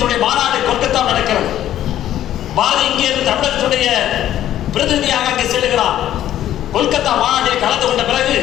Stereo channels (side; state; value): right; quieter; 12.1 dB